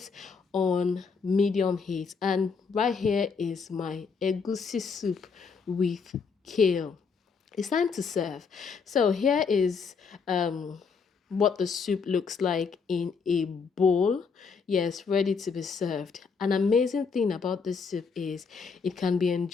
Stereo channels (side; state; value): right; quieter; 5.4 dB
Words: on medium heat. And right here is my egusi soup with kale. It's time to serve. So here is what the soup looks like in a bowl. Yes, ready to be served. An amazing thing about this soup is it can be